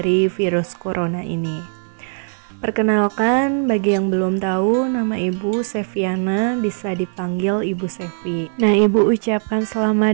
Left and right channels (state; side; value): silent; left; 65 dB below the other